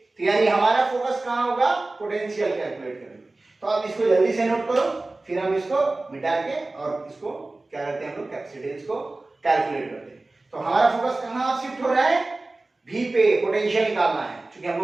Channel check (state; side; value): quieter; left; 3.1 dB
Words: तो यानी हमारा फोकस कहां होगा, पोटेंशियल कैलकुलेट करने। तो आप इसको जल्दी से नोट करो, फिर हम इसको मिटा के और इसको क्या करते हैं, हम लोग कैपेसिटेंस को कैलकुलेट करते हैं। तो हमारा फोकस कहां शिफ्ट हो रहा है, V पे, पोटेंशियल निकालना है, क्योंकि